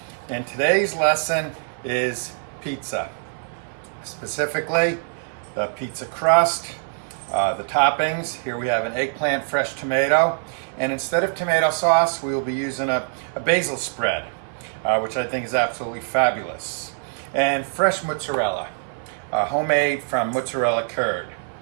and today's lesson is pizza. Specifically, the pizza crust, the toppings. Here we have an eggplant fresh tomato, and instead of tomato sauce, we will be using a basil spread, which I think is absolutely fabulous. And fresh mozzarella, homemade from mozzarella curd.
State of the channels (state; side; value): silent; left; 56 dB below the other